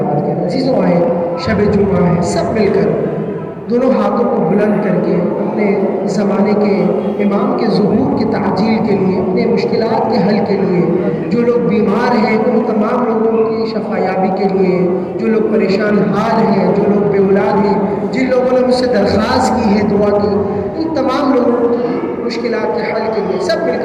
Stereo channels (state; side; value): identical; both; correlation 1.00